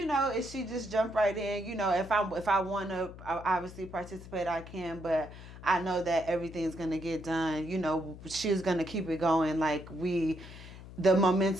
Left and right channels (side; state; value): left; noise; hum, 15 dB below the sound